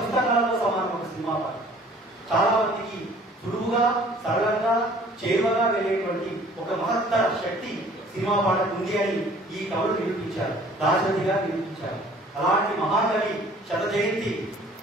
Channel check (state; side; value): normal; both; correlation 0.53